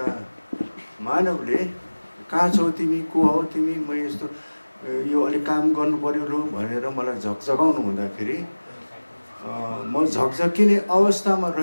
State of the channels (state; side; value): inverted; both; correlation -1.00